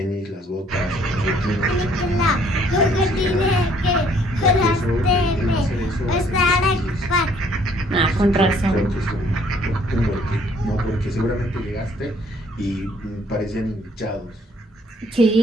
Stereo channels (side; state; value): both; normal; correlation 0.62